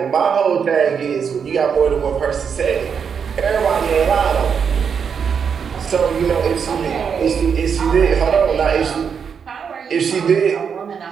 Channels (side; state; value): left; quieter; 6.8 dB